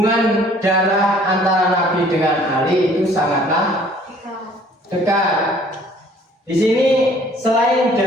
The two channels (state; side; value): normal; both; correlation 0.56